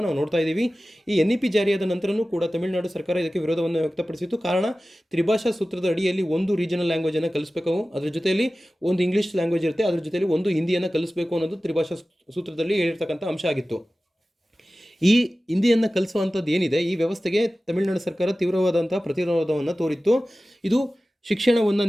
ನಾವು ನೋಡ್ತಾ ಇದ್ದೀವಿ. ಈ NEP ಜಾರಿಯಾದ ನಂತರನೂ ಕೂಡ ತಮಿಳುನಾಡು ಸರ್ಕಾರ ಇದಕ್ಕೆ ವಿರೋಧವನ್ನು ವ್ಯಕ್ತಪಡಿಸಿತ್ತು. ಕಾರಣ, ತ್ರಿಭಾಷಾ ಸೂತ್ರದ ಅಡಿಯಲ್ಲಿ ಒಂದು ರೀಜನಲ್ ಲ್ಯಾಂಗ್ವೇಜನ್ನು ಕಲಿಸಬೇಕು, ಅದರ ಜೊತೆಯಲ್ಲಿ ಒಂದು ಇಂಗ್ಲೀಷ್ ಲ್ಯಾಂಗ್ವೇಜ್ ಇರುತ್ತೆ, ಅದ್ರ ಜೊತೆಯಲ್ಲಿ ಒಂದು ಹಿಂದಿಯನ್ನು ಕಲಿಸಬೇಕು ಅನ್ನೋದು ತ್ರಿಭಾಷಾ ಸೂತ್ರದಲ್ಲಿ ಹೇಳಿರ್ತಕ್ಕಂಥ ಅಂಶ ಆಗಿತ್ತು. ಈ ಹಿಂದಿಯನ್ನು ಕಲಿಸುವಂಥದ್ದು ಏನಿದೆ, ಈ ವ್ಯವಸ್ಥೆಗೆ ತಮಿಳುನಾಡು ಸರ್ಕಾರ ತೀವ್ರವಾದಂಥ ಪ್ರತಿರೋಧವನ್ನು ತೋರಿತ್ತು. ಇದು ಶಿಕ್ಷಣವನ್ನು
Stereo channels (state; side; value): normal; both; correlation 0.96